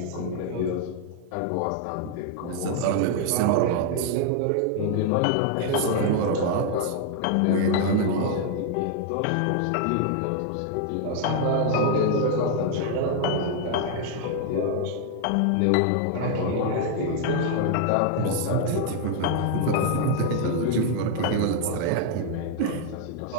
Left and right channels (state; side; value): different; both; correlation 0.00